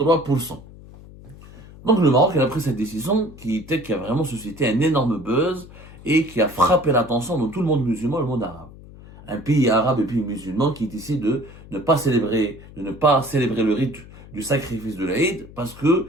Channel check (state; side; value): noise; left; hum, 19 dB below the sound